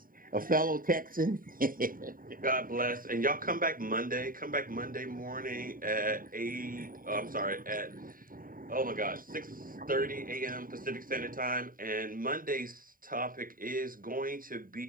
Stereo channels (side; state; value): left; late; 0.41 ms